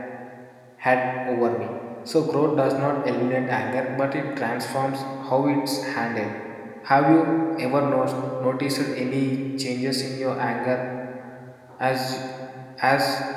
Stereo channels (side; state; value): both; identical; correlation 1.00